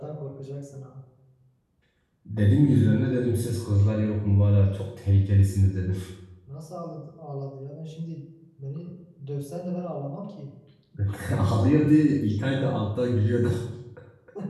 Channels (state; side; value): identical; both; correlation 1.00